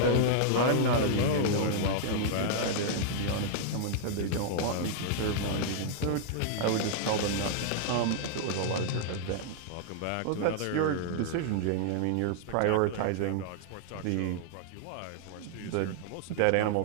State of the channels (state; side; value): different; both; correlation -0.01